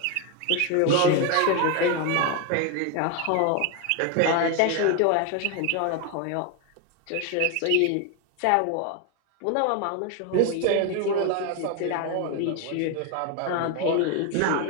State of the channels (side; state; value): both; different; correlation 0.01